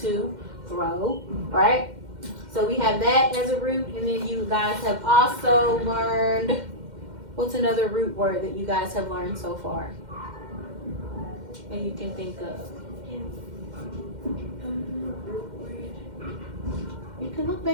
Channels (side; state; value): left; late; 2.1 ms